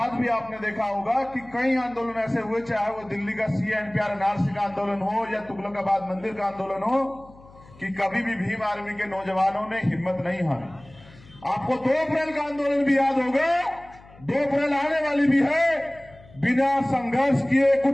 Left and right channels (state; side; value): noise; left; hum, 23 dB below the sound